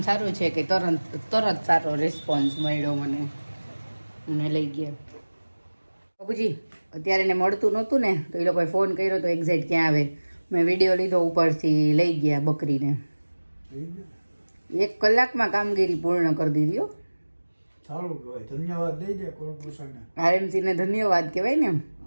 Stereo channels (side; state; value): both; inverted; correlation -1.00